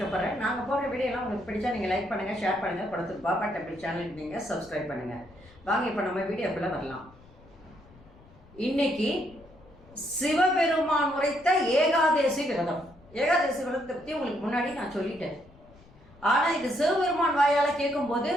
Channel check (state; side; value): noise; left; rumble, 25 dB below the sound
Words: நாங்கள் போடுற வீடியோலாம் உங்களுக்கு பிடிச்சா நீங்கள் லைக் பண்ணுங்கள், ஷேர் பண்ணுங்கள், படத்துக்கு பாபா டெம்பிள் சேனலுக்கு நீங்கள் சப்ஸ்கிரைப் பண்ணுங்கள். வாங்க இப்போ நம்ம வீடியோக்குள்ளே வரலாம். இன்னைக்கு சிவபெருமான் உரைத்த ஏகாதேசி விரதம். ஏகாதேசி விரதத்தை பற்றி உங்களுக்கு முன்னாடி நான் சொல்லிட்டேன். ஆனால் இது சிவபெருமான் வாயால் கேட்கும்போது